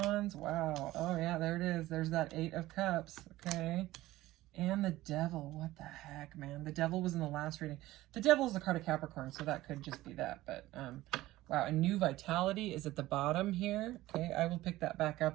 Wow. Oh, yeah, there it is. There's that 8 of Cups. Okay. And the Devil. What the heck, man? The Devil was in the last reading. The Devil is the card of Capricorn, so that could just be that. But, wow, a new vitality is at the bottom here. Okay, I will pick that back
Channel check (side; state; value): left; quieter; 16.7 dB